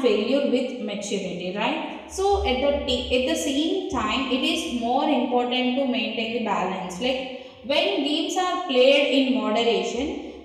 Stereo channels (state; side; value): identical; both; correlation 1.00